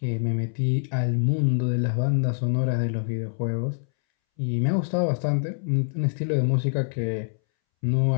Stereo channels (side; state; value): right; silent; 62 dB below the other